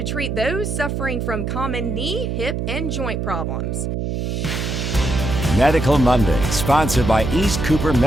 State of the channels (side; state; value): right; noise; hum, 2 dB below the sound